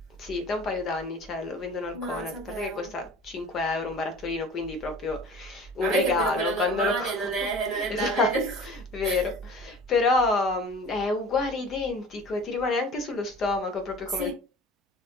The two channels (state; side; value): normal; both; correlation 0.42